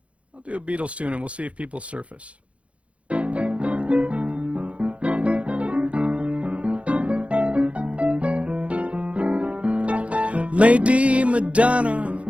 I'll do a Beatles tune, and we'll see if people surface. Lady Madonna,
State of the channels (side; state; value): left; late; 0.063 ms